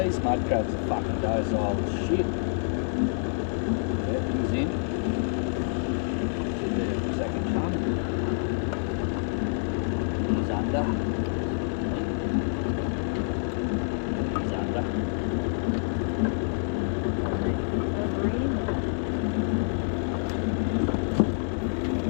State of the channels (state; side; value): silent; right; digital silence